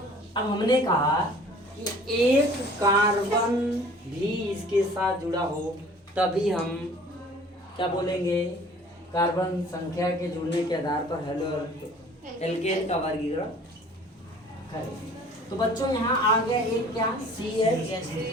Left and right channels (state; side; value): normal; both; correlation 0.50